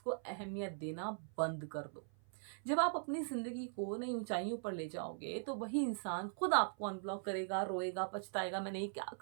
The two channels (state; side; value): silent; left; 51 dB below the other